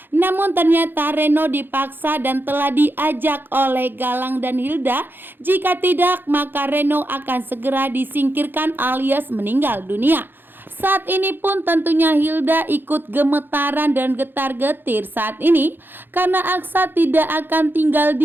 Namun ternyata Reno dipaksa dan telah diajak oleh Galang dan Hilda. Jika tidak, maka Reno akan segera disingkirkan alias meninggal dunia. Saat ini pun tentunya Hilda ikut gemetaran dan getar-getir saat ini karena Aksa tidak akan tinggal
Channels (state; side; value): late; left; 0.098 ms